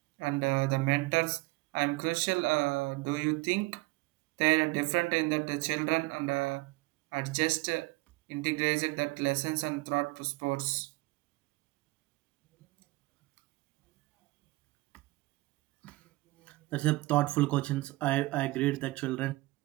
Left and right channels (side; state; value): left; quieter; 21.7 dB